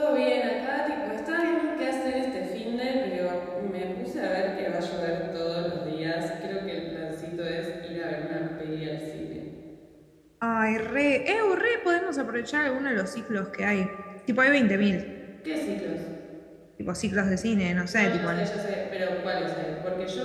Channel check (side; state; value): both; identical; correlation 1.00